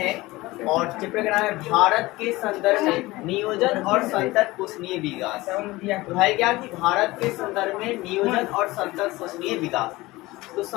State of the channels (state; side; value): quieter; right; 20.1 dB